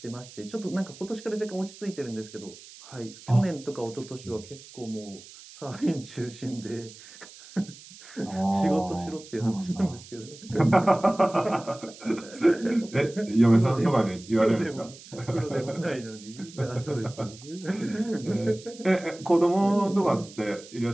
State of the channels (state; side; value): noise; right; hiss, 19 dB below the sound